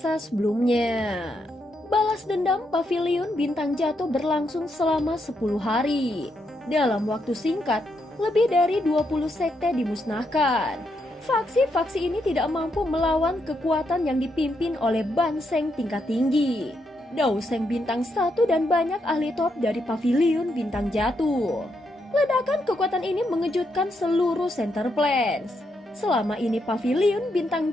sebelumnya. Balas dendam Pavilion Bintang Jatuh berlangsung selama 10 hari. Dalam waktu singkat, lebih dari 20 sekte dimusnahkan. Faksi-faksi ini tidak mampu melawan kekuatan yang dipimpin oleh Ban Seng tingkat tinggi, Dao Seng Bintang 1 dan banyak ahli top dari Pavilion Bintang Jatuh. Ledakan kekuatan ini mengejutkan seluruh Center Plains. Selama ini Pavilion Bintang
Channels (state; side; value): normal; both; correlation 0.80